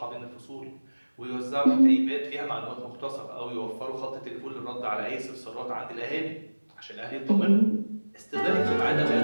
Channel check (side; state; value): both; inverted; correlation -1.00